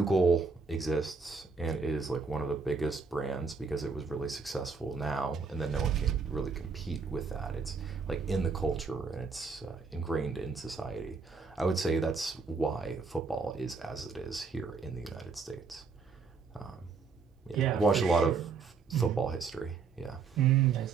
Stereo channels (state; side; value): quieter; left; 4.8 dB